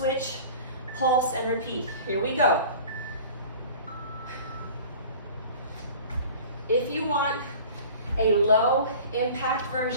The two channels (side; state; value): both; inverted; correlation -0.42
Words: pulse and repeat. Here we go. If you want a low impact